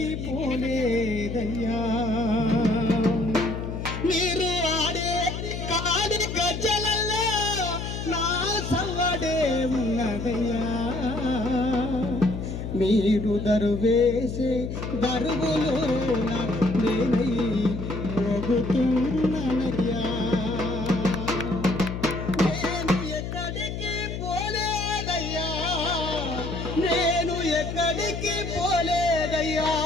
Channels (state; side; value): noise; left; hum, 5 dB below the sound